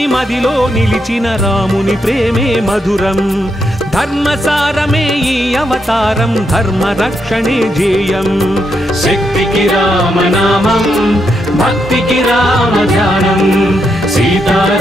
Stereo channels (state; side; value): normal; both; correlation 0.81